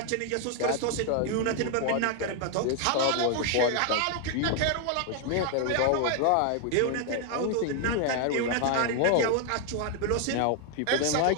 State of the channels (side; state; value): both; different; correlation 0.01